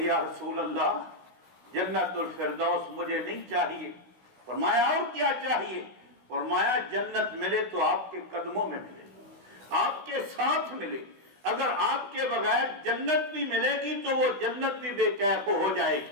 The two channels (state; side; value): late; left; 16 ms